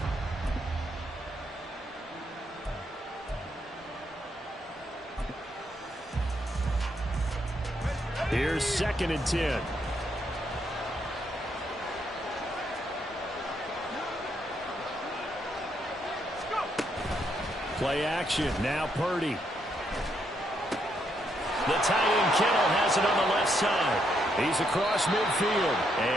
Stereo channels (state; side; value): normal; both; correlation 0.76